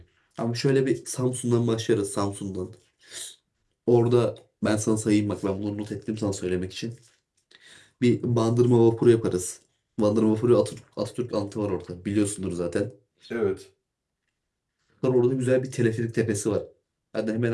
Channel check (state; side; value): identical; both; correlation 1.00